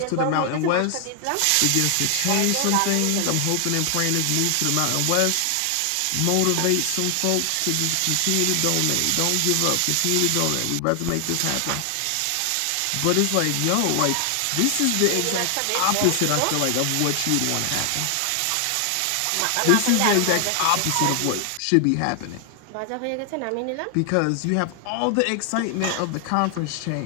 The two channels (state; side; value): different; both; correlation 0.00